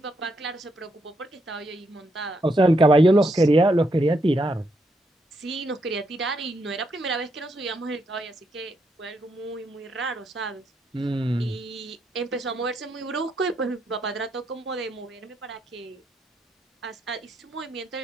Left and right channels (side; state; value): both; normal; correlation 0.78